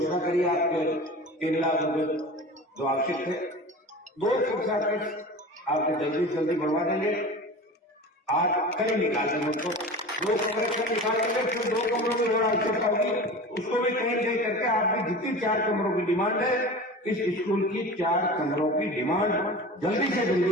करी आपके 3 लाख रुपए जो आवश्यक थे। 2 कक्षा कक्ष आपको जल्दी से जल्दी बढ़वा देंगे। आज कल निकाल देंगे उसको, 2 कमरे से निकाल देंगे, फिर 2 कमरों की और आवश्यकता होगी, उसको भी कहीं कहीं करके आपकी जितनी 4 कमरों की डिमांड है, इस स्कूल की 4 कमरों की डिमांड जल्दी से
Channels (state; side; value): normal; both; correlation 0.34